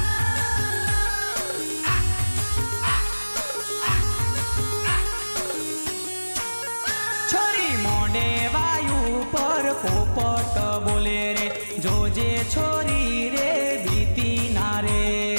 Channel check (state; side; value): inverted; both; correlation -1.00